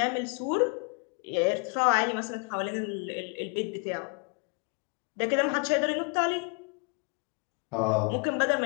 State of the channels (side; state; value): right; quieter; 37.3 dB